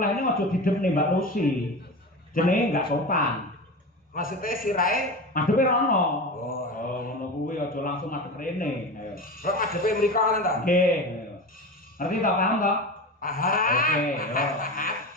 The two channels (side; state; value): both; normal; correlation 0.27